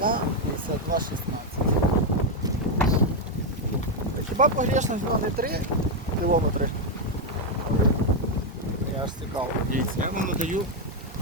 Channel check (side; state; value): both; normal; correlation 0.03